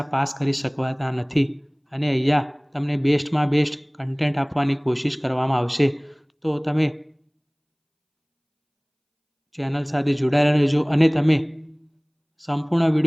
પાસ કરી શકવાના નથી. અને અહીંયા તમને બેસ્ટમાં બેસ્ટ કન્ટેન્ટ આપવાની કોશિશ કરવામાં આવશે. તો તમે ચેનલ સાથે જોડાયેલા રહેજો અને તમે સંપૂર્ણ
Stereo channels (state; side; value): identical; both; correlation 1.00